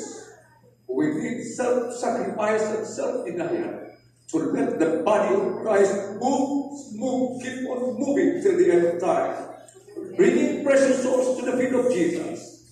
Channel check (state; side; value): identical; both; correlation 1.00